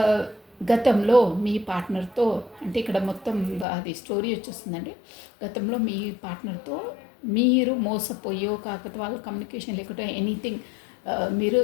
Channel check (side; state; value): right; drops out; at 3.7 s